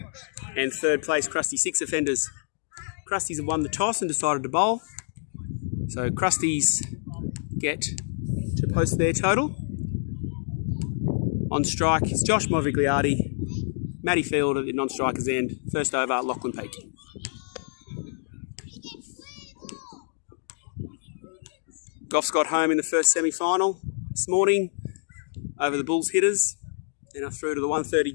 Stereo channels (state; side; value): silent; right; digital silence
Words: and third place Krusty Six Offenders. Krusties have won the toss and decided to bowl. So Krusties get to post their total. On strike is Josh Movigliardi, Matty Field at the non-striker's end. First over, Lachlan Peak. Goffs got home in the first semi-final this morning over the Bulls hitters and are through to the 130